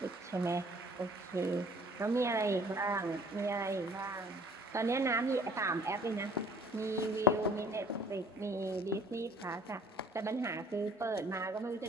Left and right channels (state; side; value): normal; both; correlation 0.53